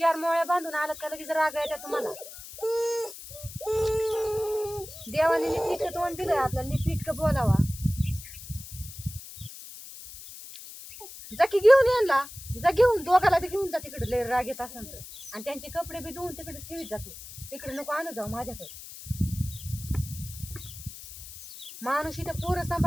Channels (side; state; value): left; noise; hiss, 14 dB below the sound